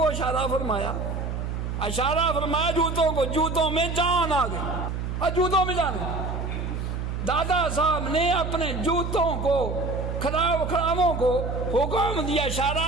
اشارہ فرمایا جوتوں کو، جوتوں میں جان آ گئی اور جوتوں میں جان گئی، دادا صاحب نے اپنے جوتوں کو کھڑاووں کو حکم دیا،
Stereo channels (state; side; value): noise; right; hum, 4 dB below the sound